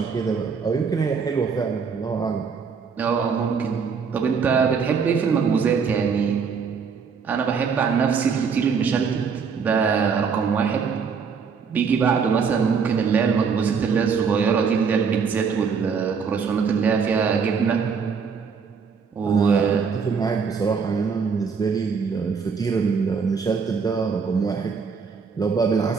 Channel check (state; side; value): quieter; left; 5.9 dB